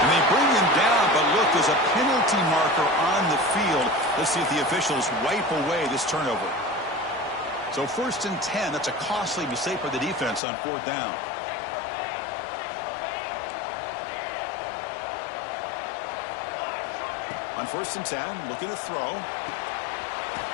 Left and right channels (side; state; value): right; drops out; at 10.4 s